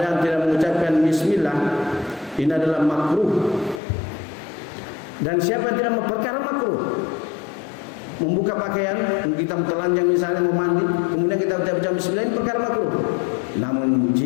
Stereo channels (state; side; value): drops out; right; at 3.8 s